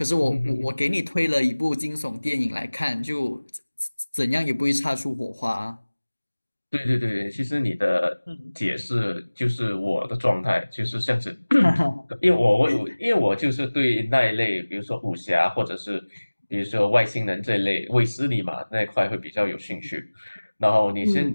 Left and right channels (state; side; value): inverted; both; correlation -1.00